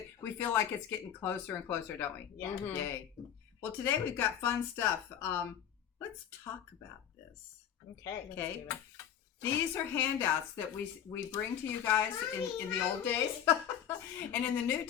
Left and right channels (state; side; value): quieter; right; 9.4 dB